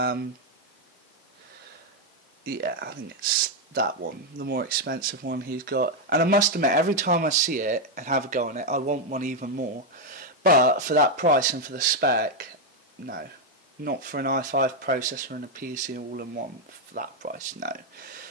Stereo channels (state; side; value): normal; both; correlation 0.02